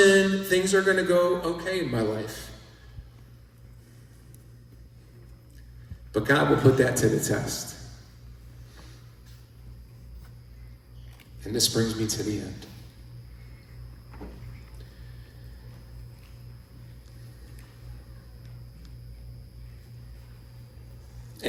things are going to go okay in my life. But God will put that to the test. And this brings me to the end.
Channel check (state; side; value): identical; both; correlation 1.00